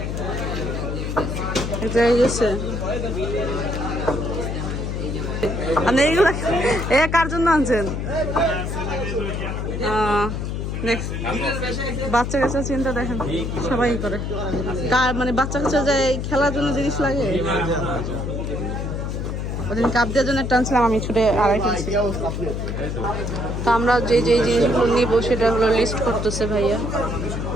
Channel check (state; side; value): noise; left; hum, 3 dB below the sound